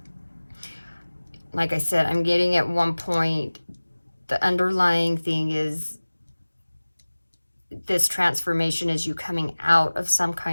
Like I said, I'm getting at one point, the underlying thing is this transformation is you coming out of some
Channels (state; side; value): inverted; both; correlation -1.00